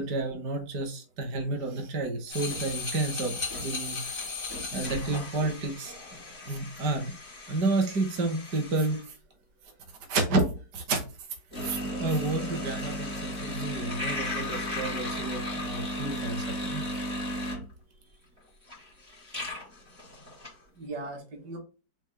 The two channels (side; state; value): left; late; 4.5 ms